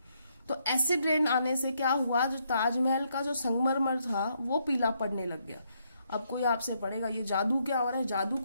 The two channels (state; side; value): inverted; both; correlation -0.75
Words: तो एसिड रेन आने से क्या हुआ, जो ताजमहल का जो संगमरमर था वो पीला पड़ने लग गया। अब कोई आपसे पढ़ेगा ये जादू क्या हो रहा है, जादू